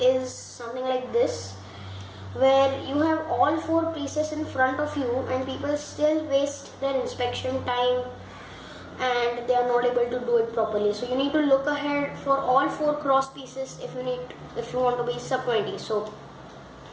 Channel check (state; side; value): identical; both; correlation 1.00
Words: is something like this, where you have all 4 pieces in front of you and people still waste their inspection time and they are not able to do it properly. So you need to look ahead for all 4 cross pieces if you want to be sub 20. So